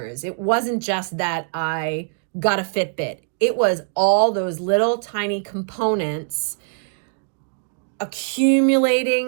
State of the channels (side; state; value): left; silent; digital silence